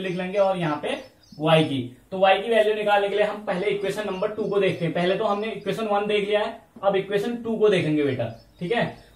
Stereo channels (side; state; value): both; identical; correlation 1.00